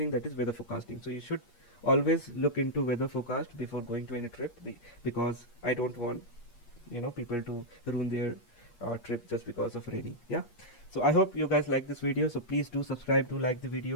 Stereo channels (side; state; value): right; late; 8.4 ms